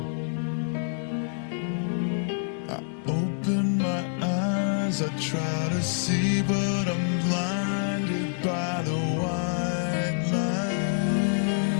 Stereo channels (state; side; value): silent; right; 60 dB below the other